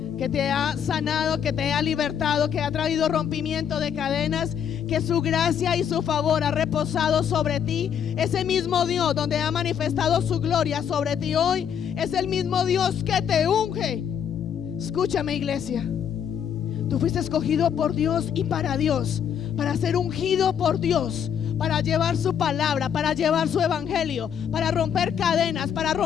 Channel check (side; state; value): right; quieter; 8.4 dB